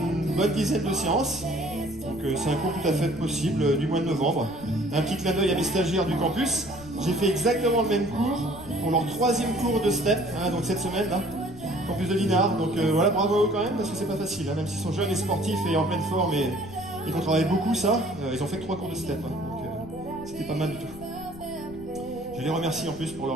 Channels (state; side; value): noise; left; rumble, 17 dB below the sound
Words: bonne dizaine de séances. Donc c'est un cours tout à fait possible du mois de novembre. Un petit clin d'œil à mes stagiaires du campus. J'ai fait exactement le même cours pour leur 3e cours de step, hein, donc cette semaine, là, campus de Dinard. Donc voilà, bravo à eux quand même, parce que c'est pas facile. Hein, même s'ils sont jeunes et sportifs et en pleine forme et qu'on travaille beaucoup ça, ils ont fait que 3 cours de step. Hein, donc c'était pas mal du tout. Je les remercie en plus pour